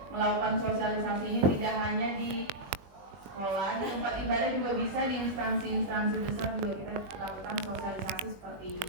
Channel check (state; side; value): late; left; 21 ms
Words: melakukan sosialisasi ini tidak hanya di sekolah, di tempat ibadah juga bisa, di instansi-instansi besar juga kita lakukan sosialisasi seperti